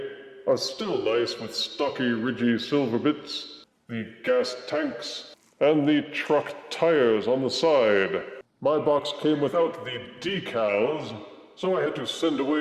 are still nice with stocky, ridgy silver bits, the gas tanks, and the truck tires on the side. My box came without the decals, so I had to send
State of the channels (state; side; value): identical; both; correlation 1.00